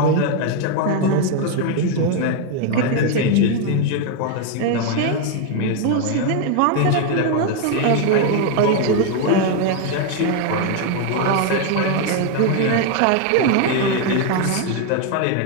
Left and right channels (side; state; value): both; different; correlation 0.01